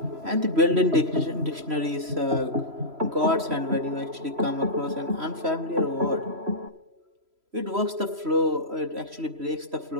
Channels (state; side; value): late; left; 3.0 ms